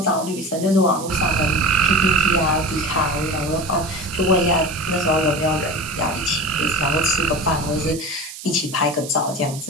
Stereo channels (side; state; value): right; noise; hiss, 13 dB below the sound